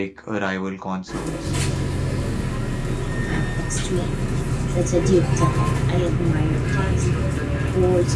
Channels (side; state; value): both; identical; correlation 1.00